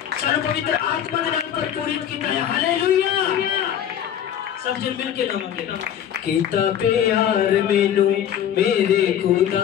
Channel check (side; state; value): right; quieter; 9.8 dB